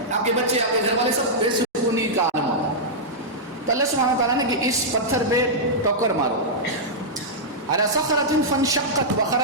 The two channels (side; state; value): both; normal; correlation -0.09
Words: آپ کے بچے، آپ کے گھر والے سب بے سکونی کا عالم ہوتا ہے. تو اللہ سبحانہ وتعالیٰ نے کہ اس پتھر پہ ٹوکر مارو، علی صخرۃ فانشقت